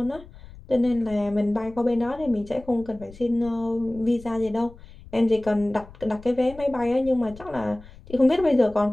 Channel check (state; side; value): noise; left; rumble, 19 dB below the sound